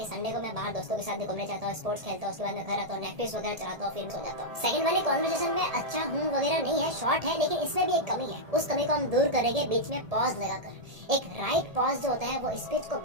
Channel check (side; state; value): left; late; 1.7 ms